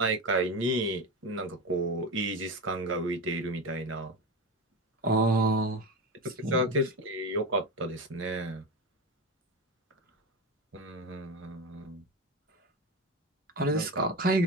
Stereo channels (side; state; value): both; normal; correlation 0.21